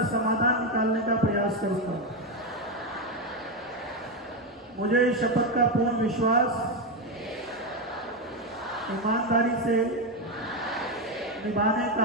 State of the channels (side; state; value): both; normal; correlation 0.09